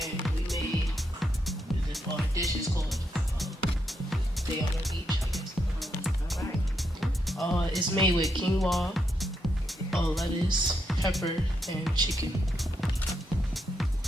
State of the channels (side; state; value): both; normal; correlation 0.80